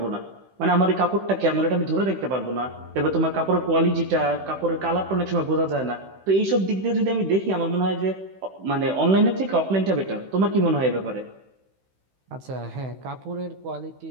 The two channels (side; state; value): left; late; 16 ms